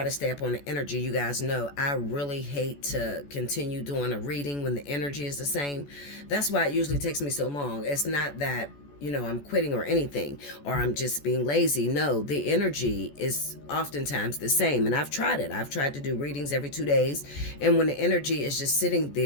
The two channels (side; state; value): right; late; 14 ms